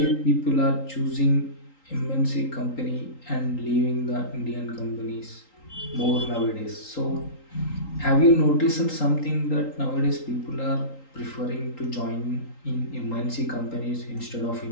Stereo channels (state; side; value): late; right; 3.8 ms